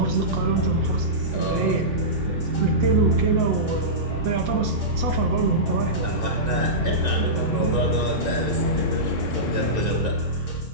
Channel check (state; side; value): normal; both; correlation -0.17